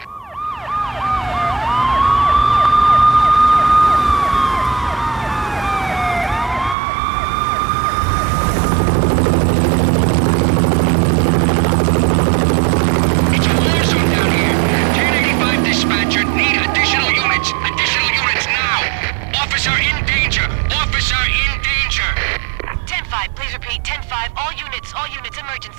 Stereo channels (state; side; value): drops out; left; at 6.8 s